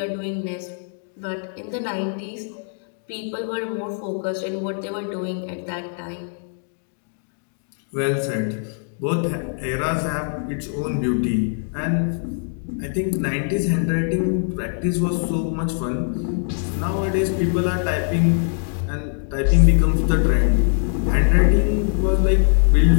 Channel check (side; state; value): right; silent; digital silence